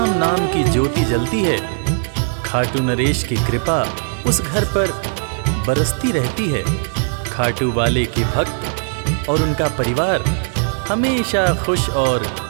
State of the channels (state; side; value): silent; left; 58 dB below the other